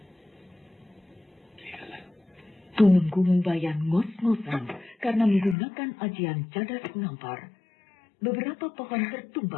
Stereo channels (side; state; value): right; drops out; at 5.6 s